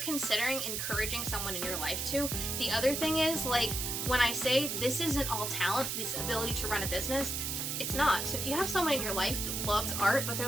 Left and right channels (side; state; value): right; noise; hiss, 2 dB below the sound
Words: encouraging someone in your life to. The other thing is, like, when I say this isn't all talent, this ability to run a business, it's not. So if you have someone in your life that loves art, but